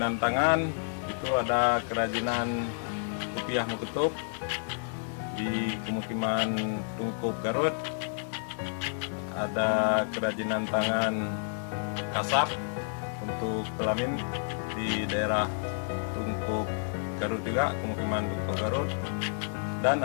tangan, itu ada kerajinan kopiah Muketup di pemukiman Tungkup Garut, ada kerajinan tangan kasap untuk pelamin di daerah Tungkup Garut juga, pemukiman Tungkup Garut, dan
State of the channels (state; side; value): silent; right; digital silence